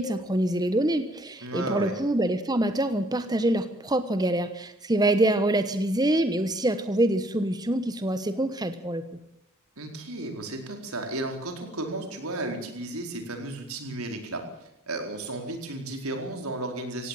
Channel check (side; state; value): both; normal; correlation 0.62